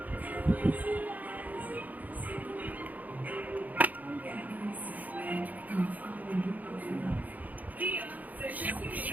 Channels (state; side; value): late; left; 0.079 ms